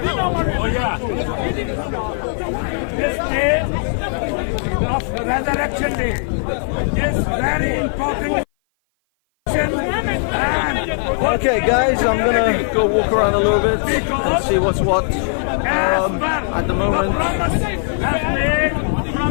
This day of Resurrection Day is very important. Okay, guys, I'm gonna go walk around a little bit and see what's what. At the moment,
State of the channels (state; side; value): silent; right; 56 dB below the other